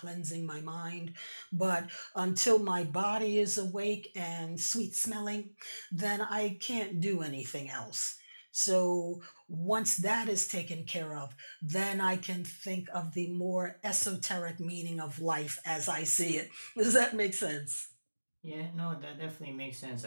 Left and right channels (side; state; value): both; inverted; correlation -1.00